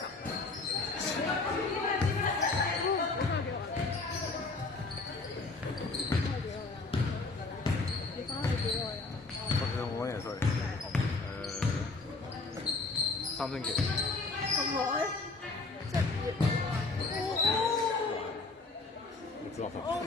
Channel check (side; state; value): right; quieter; 3.7 dB